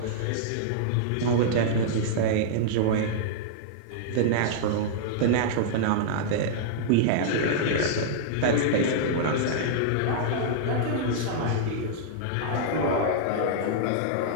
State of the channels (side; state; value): both; different; correlation -0.02